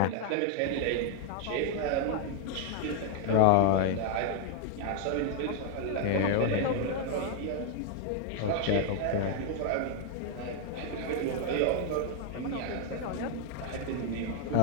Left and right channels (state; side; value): different; both; correlation 0.00